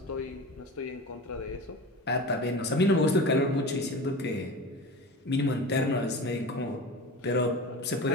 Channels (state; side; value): normal; both; correlation 0.32